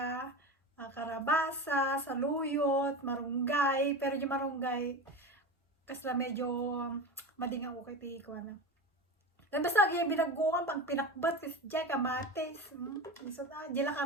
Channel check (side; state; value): both; normal; correlation 0.26